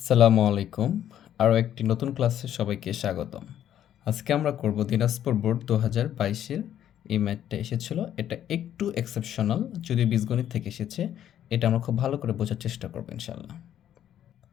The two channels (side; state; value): right; quieter; 10.8 dB